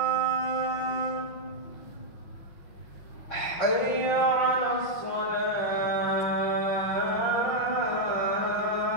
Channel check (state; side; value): late; right; 5.5 ms